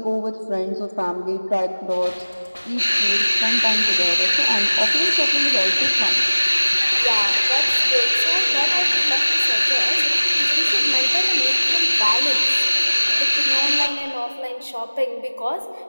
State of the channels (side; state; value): both; inverted; correlation -1.00